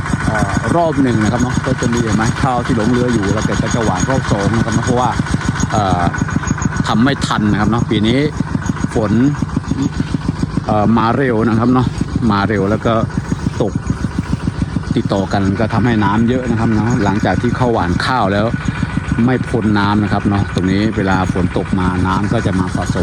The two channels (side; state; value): both; identical; correlation 1.00